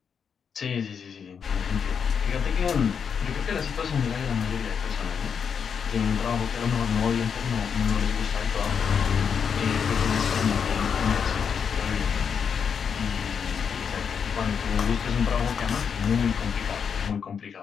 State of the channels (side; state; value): right; quieter; 6.8 dB